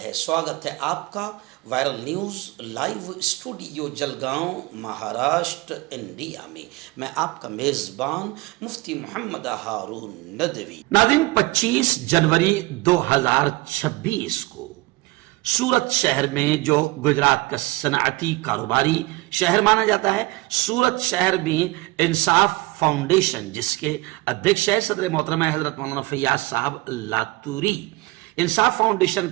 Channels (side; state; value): left; quieter; 21.5 dB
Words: سواگت ہے آپ کا viral news live studio Jalgaon Maharashtra India میں۔ میں آپ کا میزبان مفتی محمد ہارون ندوی۔ ناظرین، 25 جنوری 2026 کو سورت شہر میں، جو گجرات کا صنعتی کاروباری شہر مانا جاتا ہے، سورت شہر میں انصاف فاؤنڈیشن، جس کے ادھیکش ہے صدر محترمہ حضرت مولانا فیاض صاحب لاتوری، انصاف فاؤنڈیشن